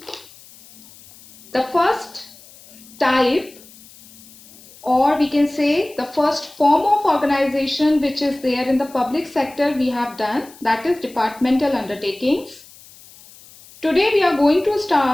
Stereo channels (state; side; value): noise; left; hiss, 22 dB below the sound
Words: the first type, or we can say the first form of organization which is there in the public sector we have done, that is departmental undertakings. Today we are going to